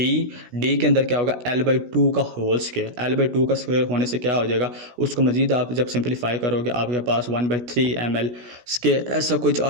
के अंदर क्या होगा, L/2 का होल स्क्वायर। L/2 का स्क्वायर होने से क्या हो जाएगा, उसको मजीद आप जब सिंप्लीफाई करोगे आपके पास 1/3 ml², ऐसा कुछ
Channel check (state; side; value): late; left; 16 ms